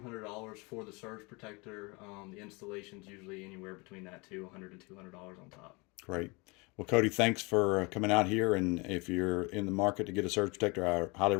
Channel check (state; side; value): quieter; right; 27.7 dB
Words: for the surge protector. The installation's usually anywhere between that too, $100 to $200 on top. Great. Well, Cody, thanks for coming out here. And if you're in the market to get a surge protector, I highly